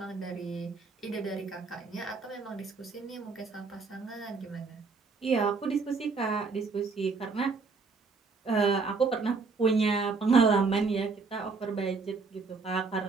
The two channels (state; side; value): quieter; left; 4.5 dB